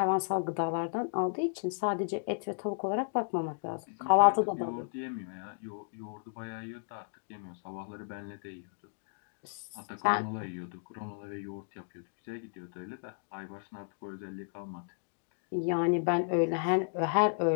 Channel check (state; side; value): silent; right; digital silence